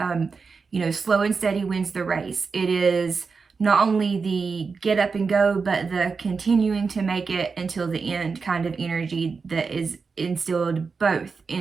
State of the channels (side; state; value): left; quieter; 4.9 dB